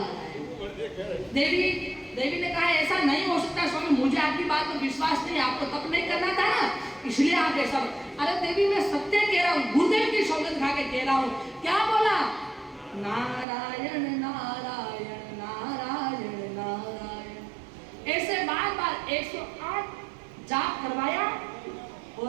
देवी ने कहा ऐसा नहीं हो सकता स्वामी, मुझे आपकी बात पर विश्वास नहीं, आपको तप नहीं करना था ना, इसलिए आप ऐसा। अरे देवी मैं सत्य कह रहा हूँ, गुरुदेव की सौगंध खा के कह रहा हूँ। क्या बोला? नारायण नारायण नारायण नारायण। ऐसे बार बार 108 जाप करवाया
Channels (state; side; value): drops out; left; at 13.5 s